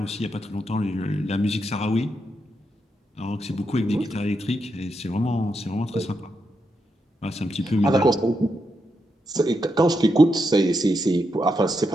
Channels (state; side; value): normal; both; correlation 0.83